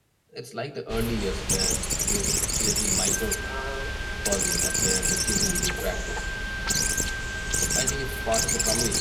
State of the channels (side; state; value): both; identical; correlation 1.00